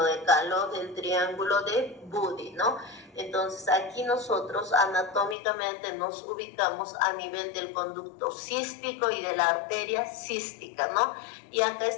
de Calot, el triángulo de Buddy, ¿no? Entonces aquí nosotros anatómicamente nos ubicamos a nivel del conducto cístico y de la arteria cística, ¿no? Y acá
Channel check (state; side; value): drops out; right; at 5.4 s